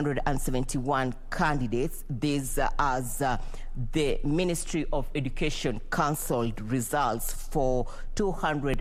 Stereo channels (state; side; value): identical; both; correlation 1.00